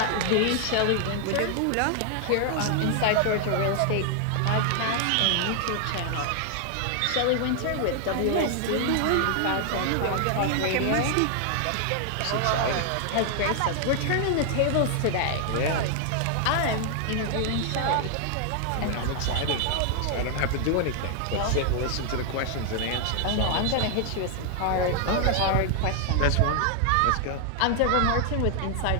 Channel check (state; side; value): different; both; correlation 0.00